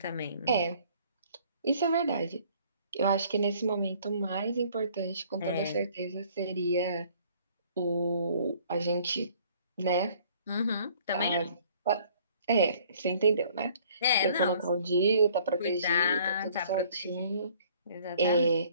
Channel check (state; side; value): inverted; both; correlation -0.57